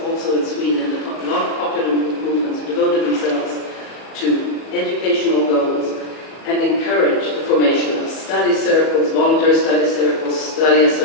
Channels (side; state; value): right; late; 37 ms